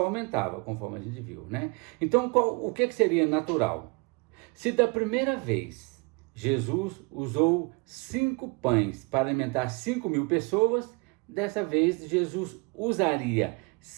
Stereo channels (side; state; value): left; quieter; 30.3 dB